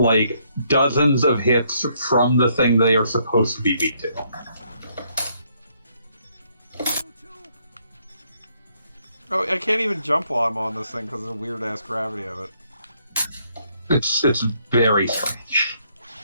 dozens of hits from the thing they are supposed to be weak to. Oh, I can't even jump while I'm on this thing because of the weird ass gravity of it. It's very strange.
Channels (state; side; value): inverted; both; correlation -0.71